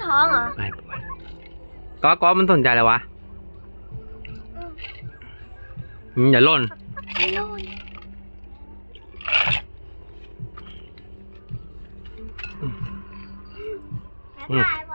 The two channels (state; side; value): inverted; both; correlation -1.00